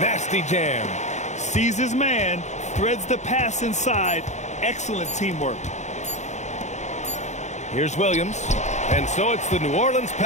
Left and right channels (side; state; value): right; late; 0.34 ms